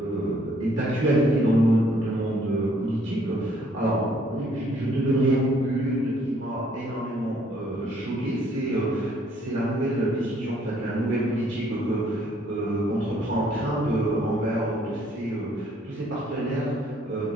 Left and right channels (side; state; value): both; normal; correlation 0.64